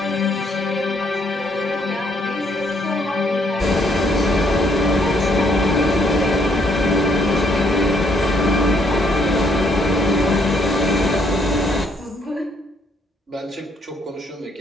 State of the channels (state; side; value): normal; both; correlation 0.69